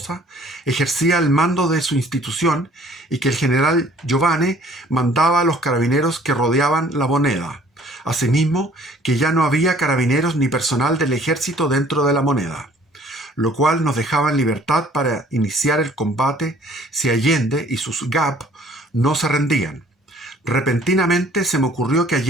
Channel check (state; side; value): normal; both; correlation 0.56